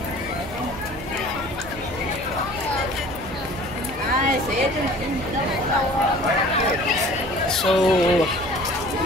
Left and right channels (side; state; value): right; noise; hum, 14 dB below the sound